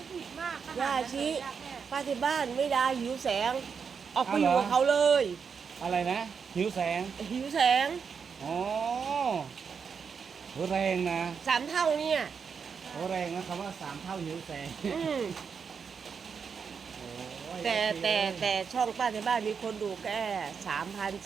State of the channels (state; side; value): quieter; left; 6.2 dB